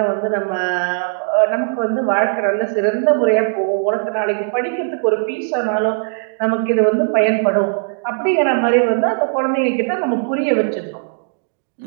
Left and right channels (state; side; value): silent; left; digital silence